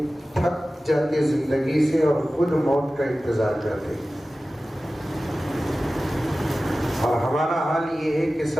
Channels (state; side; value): normal; both; correlation 0.96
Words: تھک جاتے زندگی سے اور خود موت کا انتظار کرتے، اور ہمارا حال یہ ہے کہ